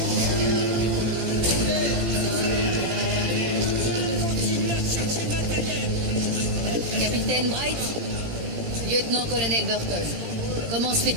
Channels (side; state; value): left; late; 17 ms